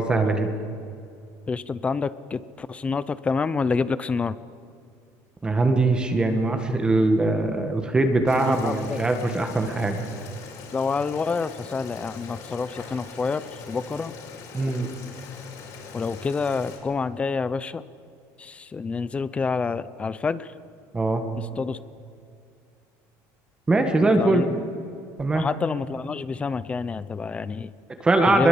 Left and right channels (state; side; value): normal; both; correlation 0.80